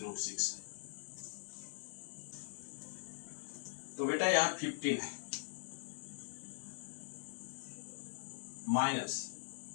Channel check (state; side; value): silent; right; digital silence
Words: है। तो बेटा यहाँ 15 है माइनस